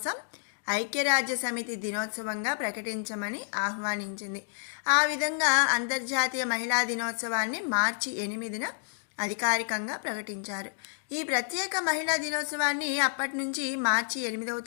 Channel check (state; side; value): silent; right; digital silence